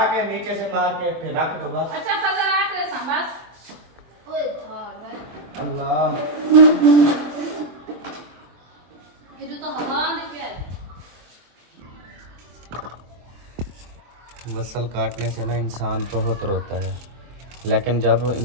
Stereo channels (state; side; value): late; left; 23 ms